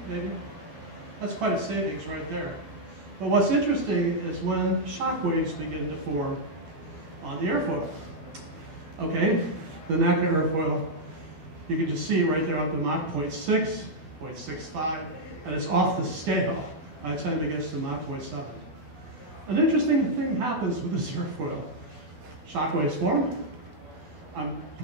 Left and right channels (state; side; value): late; left; 12 ms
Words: maybe. That's quite a savings right there. But what's interesting is when shock waves begin to form on the airfoil. Okay, the NACA airfoil, you can just see right there up to Mach 0.6, 0.65, and it's off the scale by the time it gets to Mach 0.7. An interesting thing happens with this airfoil. Shock waves form. I'm